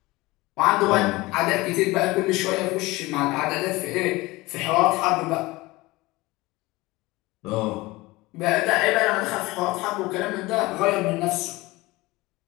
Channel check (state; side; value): quieter; right; 21.0 dB